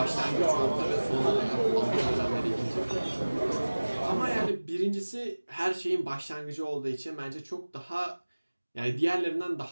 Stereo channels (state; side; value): inverted; both; correlation -1.00